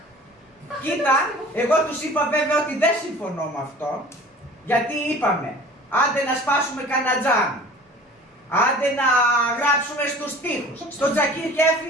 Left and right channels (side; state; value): both; normal; correlation 0.44